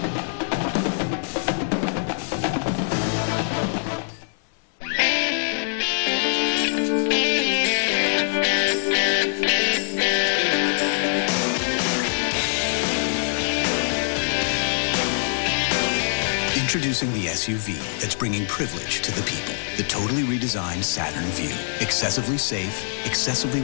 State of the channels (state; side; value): silent; right; digital silence